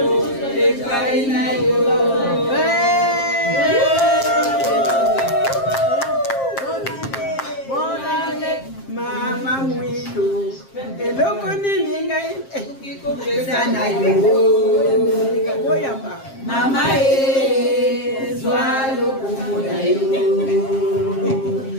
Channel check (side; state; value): right; late; 7.5 ms